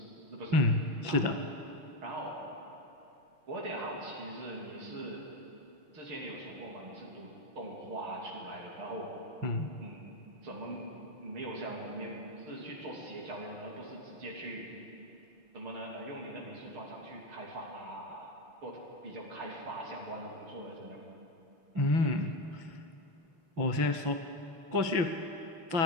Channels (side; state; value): left; late; 6.0 ms